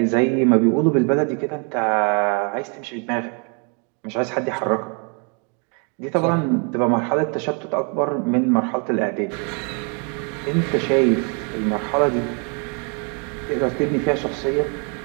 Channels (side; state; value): left; quieter; 37.0 dB